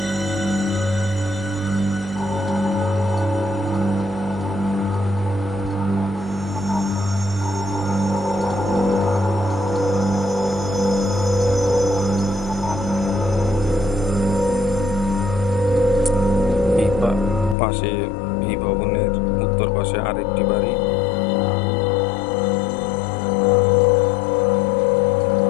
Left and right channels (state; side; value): drops out; right; at 17.6 s